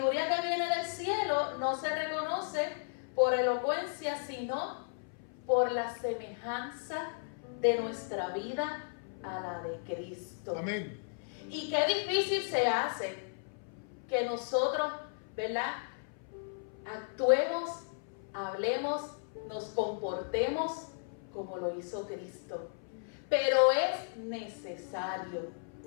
que viene del cielo no se reconoce por elocuencia, sino por la semejanza de nuestra vida a la de Cristo. Amén. Y qué difícil se hace que nosotros, ¿verdad?, actuemos, hablemos, nos comportemos como lo hizo Cristo. Pero es necesario.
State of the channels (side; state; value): right; silent; 55 dB below the other